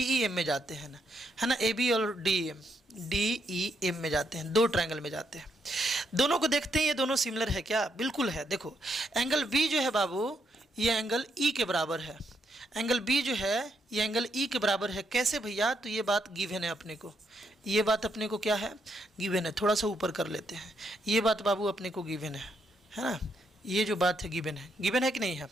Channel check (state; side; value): normal; both; correlation 0.77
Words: ई एम में जाते हैं ना, है ना, ए बी और डी ई एम में जाते हैं, दो ट्रायंगल में जाते हैं। दोनों को देखते हैं ये दोनों सिमिलर है क्या? बिल्कुल है। देखो एंगल बी जो है बाबू ये एंगल ई के बराबर है, एंगल बी जो है ये एंगल ई के बराबर है। कैसे भैया? तो ये बात गिवन है अपने को, ये बात अपने को क्या है, गिवन है। थोड़ा सा ऊपर कर लेते हैं, ये बात बाबू अपने को गिवन है ना, ये जो बात है गिवन है कि नहीं है?